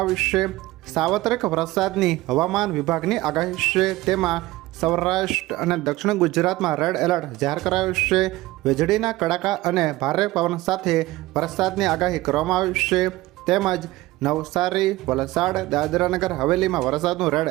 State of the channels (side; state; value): left; quieter; 18.4 dB